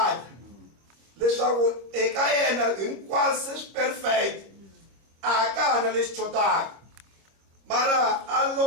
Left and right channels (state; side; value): late; left; 26 ms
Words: leswaku eka yena hinkwaswo swi perfect a ka ha na lexi chotaka. Mara a